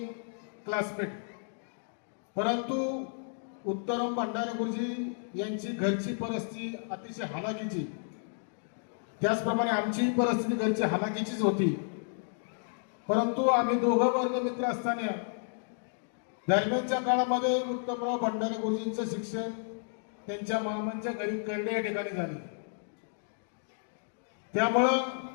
क्लासमेट. परंतु उत्तम भंडारे गुरुजी यांची घरची परिस्थिती अतिशय हालाकीची, त्याचप्रमाणे आमची परिस्थिती घरची हालाकीचीच होती. परंतु आम्ही दोघं वर्ग मित्र असताना दरम्यानच्या काळामध्ये उत्तमराव भंडारे गुरुजींचं शिक्षण त्यांच्या मामांच्या घरी कळडे या ठिकाणी झाले. त्यामुळं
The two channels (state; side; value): silent; right; digital silence